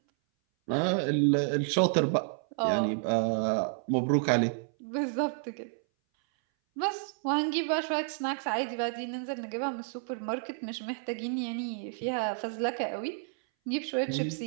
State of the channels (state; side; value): silent; left; 58 dB below the other